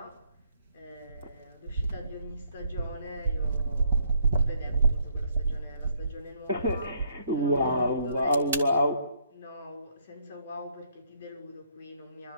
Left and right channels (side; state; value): both; inverted; correlation -0.69